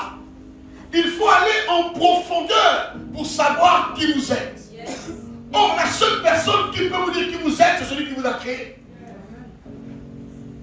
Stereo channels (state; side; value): identical; both; correlation 1.00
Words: Il faut aller en profondeur pour savoir qui vous êtes. Or, la seule personne qui peut vous dire qui vous êtes, c'est celui qui vous a créé.